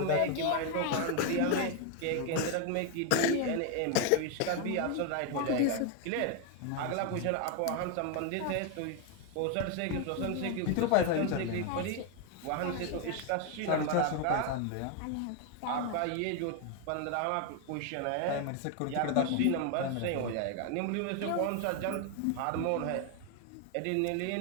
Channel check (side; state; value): both; different; correlation 0.01